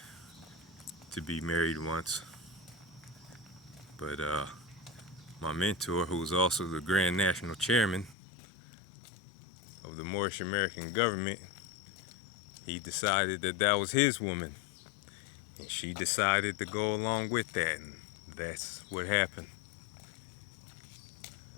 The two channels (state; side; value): drops out; right; at 8.2 s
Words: to be married once. But my mentor, who was also the Grand National Chairman of the Moorish American government, he decided that that was his woman. And she decided to go along with that, and that's what happened.